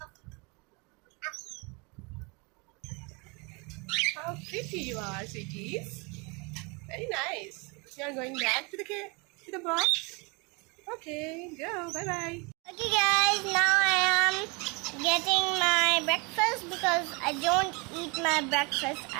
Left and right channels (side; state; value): left; quieter; 29.6 dB